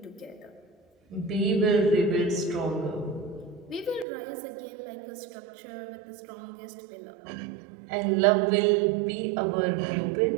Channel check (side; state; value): left; drops out; at 4.0 s